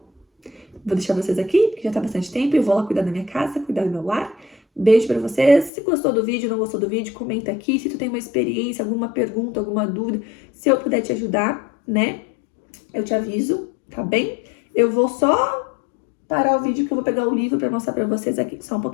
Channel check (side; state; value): right; drops out; at 5.7 s